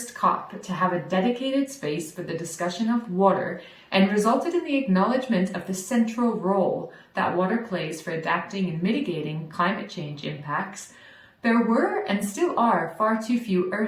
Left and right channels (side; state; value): both; identical; correlation 1.00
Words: COP to have a dedicated space for the discussion of water and resulted in the acknowledgement of the central role that water plays for adapting and mitigating climate change impacts, there were and still are far too few